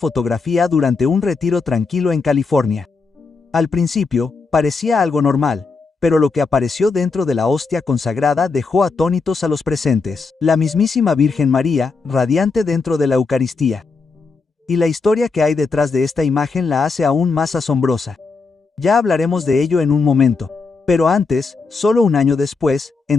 durante un retiro tranquilo en California. Al principio, parecía algo normal, pero lo que apareció dentro de la hostia consagrada dejó atónitos a los presentes. La mismísima Virgen María, radiante dentro de la Eucaristía. Y la historia que hay detrás de esta imagen la hace aún más asombrosa. Ya hablaremos de ello en un momento. Pero antes, solo un año después,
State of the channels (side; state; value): right; quieter; 4.4 dB